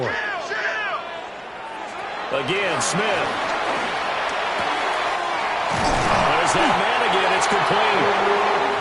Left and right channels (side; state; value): both; identical; correlation 1.00